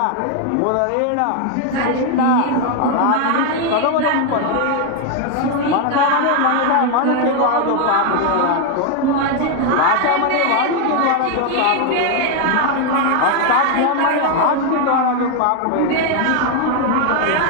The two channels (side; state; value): both; different; correlation 0.01